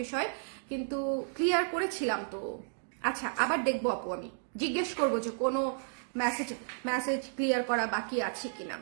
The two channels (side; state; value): left; silent; digital silence